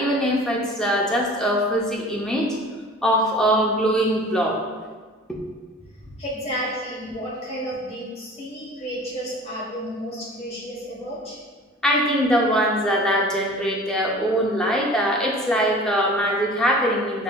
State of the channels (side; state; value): both; normal; correlation 0.43